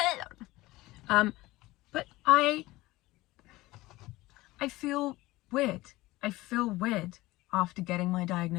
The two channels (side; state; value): right; quieter; 19.1 dB